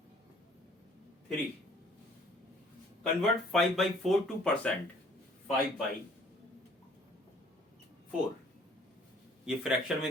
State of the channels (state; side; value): normal; both; correlation 0.57